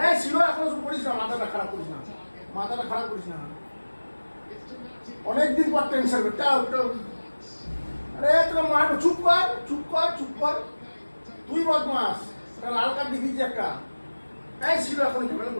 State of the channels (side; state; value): both; inverted; correlation -1.00